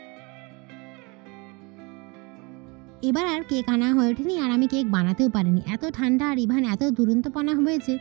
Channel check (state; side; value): quieter; left; 28.2 dB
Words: এবার আর কেক আনা হয়ে ওঠেনি, আর আমি কেক বানাতেও পারিনি, এত ঠান্ডা আর ইভান এত দুরন্তপনা হয়েছে